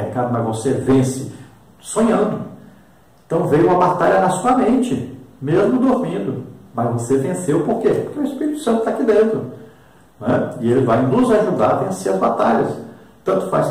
mas você vence sonhando. Então veio uma batalha na sua mente, mesmo dormindo. Mas você venceu por quê? Porque o Espírito Santo está aqui dentro. Né? E ele vai nos ajudar a vencer as batalhas. Tanto faz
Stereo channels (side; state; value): both; identical; correlation 1.00